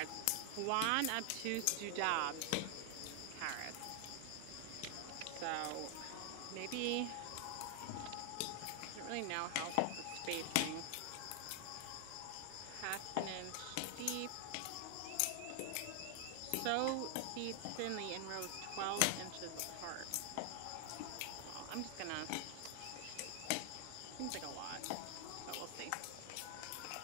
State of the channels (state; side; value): different; both; correlation 0.00